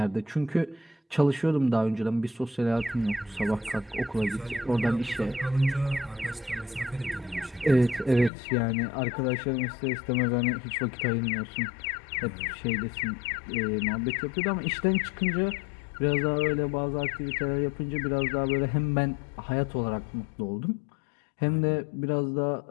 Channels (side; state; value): right; drops out; at 8.3 s